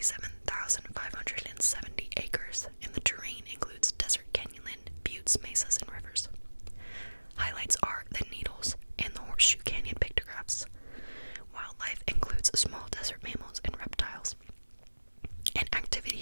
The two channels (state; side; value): inverted; both; correlation -1.00